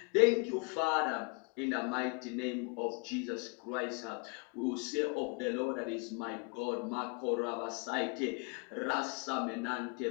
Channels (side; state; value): right; quieter; 33.4 dB